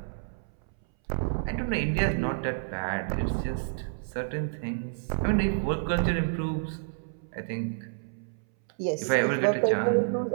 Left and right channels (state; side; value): silent; left; 58 dB below the other